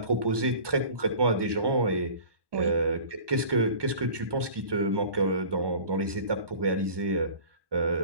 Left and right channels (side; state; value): left; late; 1.2 ms